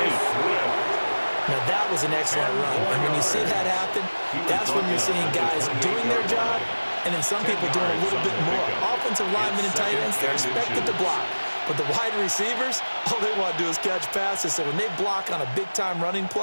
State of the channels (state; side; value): inverted; both; correlation -1.00